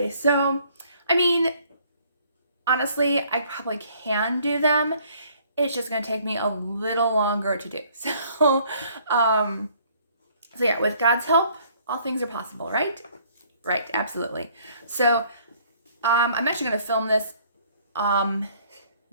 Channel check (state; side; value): inverted; both; correlation -0.61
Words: Honestly, I probably can do them. It's just gonna take me a little longer to do. Um, so yeah, with God's help, all things are possible, right? Right, absolutely. I'm actually gonna film this